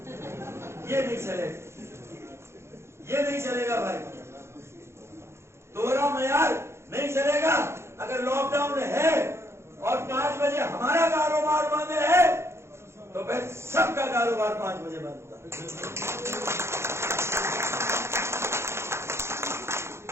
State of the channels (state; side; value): late; left; 0.13 ms